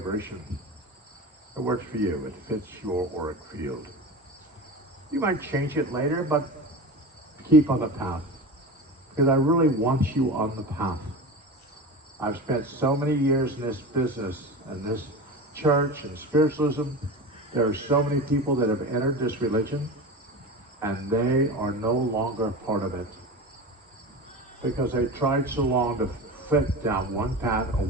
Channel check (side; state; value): both; normal; correlation 0.28